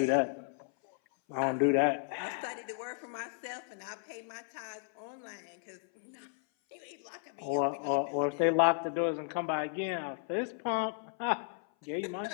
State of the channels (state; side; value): silent; right; 55 dB below the other